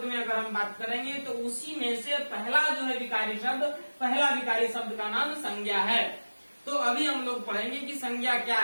में अगर हम बात करेंगे तो उसी में से पहला जो है विकारी शब्द, पहला विकारी शब्द का नाम संज्ञा है। तो अभी हम लोग पढ़ेंगे कि संज्ञा क्या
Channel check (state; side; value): inverted; both; correlation -1.00